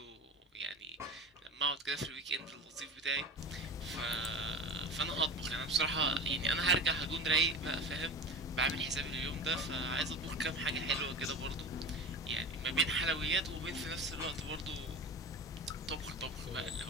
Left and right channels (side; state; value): both; normal; correlation 0.31